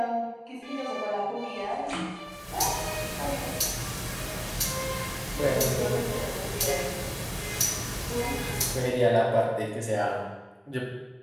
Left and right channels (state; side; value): identical; both; correlation 1.00